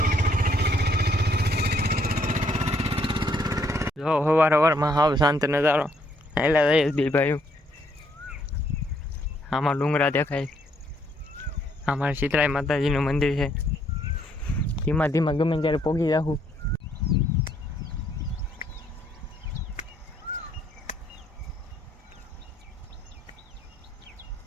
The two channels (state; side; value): normal; both; correlation 0.69